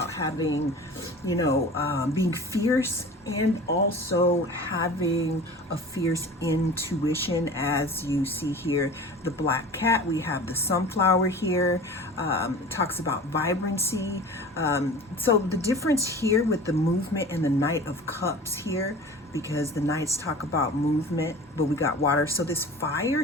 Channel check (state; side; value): normal; both; correlation 0.38